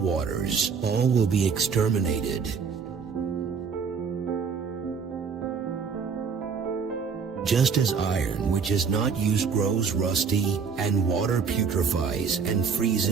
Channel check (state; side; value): quieter; left; 5.9 dB